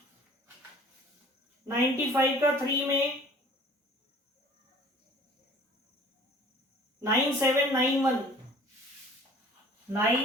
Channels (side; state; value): both; normal; correlation 0.49